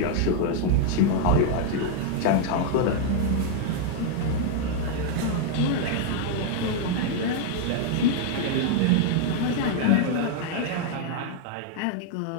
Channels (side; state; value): both; different; correlation 0.00